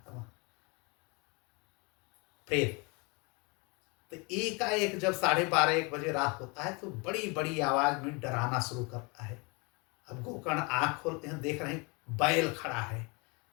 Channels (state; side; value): quieter; right; 29.8 dB